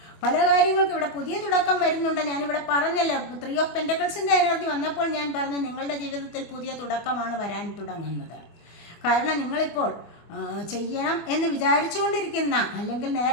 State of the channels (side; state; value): right; late; 25 ms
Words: പല കാര്യങ്ങൾക്കും ഇവിടെ പുതിയ തുടക്കം വരുന്നുണ്ട്. ഞാനിവിടെ പറഞ്ഞല്ലോ, 3 ഓഫ് പെൻറ്റക്കിൾസിൻ്റെ എനർജി വന്നപ്പോൾ ഞാൻ പറഞ്ഞു നിങ്ങളുടെ ജീവിതത്തിൽ പുതിയ തുടക്കമാണ് വരാൻ തുടങ്ങുന്നത്. കാരണം നിങ്ങളിപ്പോൾ ചെയ്യണം എന്ന് വിചാരിച്ചുകൊണ്ടിരിക്കുന്ന, അല്ലെങ്കിൽ